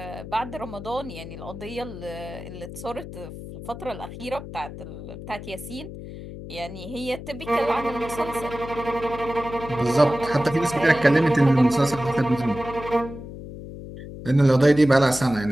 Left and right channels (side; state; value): left; noise; hum, 12 dB below the sound